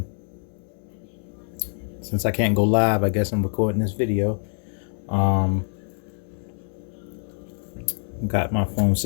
since I can't go live, I guess I'm recording this video. Um got my phone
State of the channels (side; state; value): right; silent; digital silence